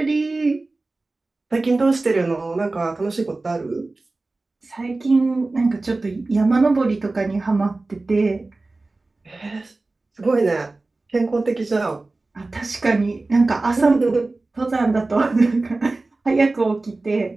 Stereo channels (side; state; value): left; quieter; 3.3 dB